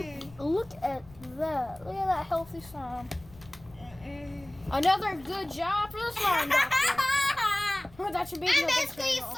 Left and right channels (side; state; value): left; noise; rumble, 23 dB below the sound